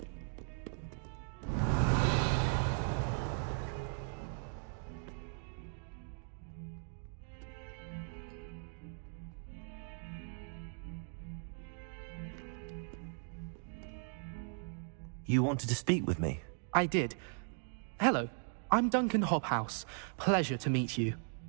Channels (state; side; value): silent; left; 52 dB below the other